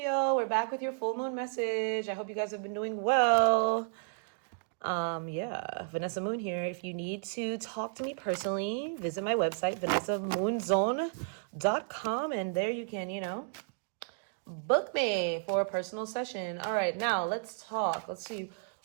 We're back with your full moon message. I hope you guys have been doing well. Vanessa Moon here. If you need to talk to me personally, visit my website, vanessamoongirl.com, and there you can, book me for a personal session. All right, now let's talk. Let's see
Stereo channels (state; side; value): silent; left; digital silence